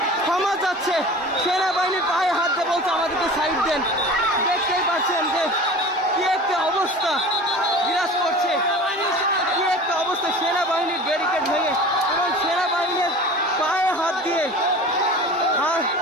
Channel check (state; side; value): normal; both; correlation 0.38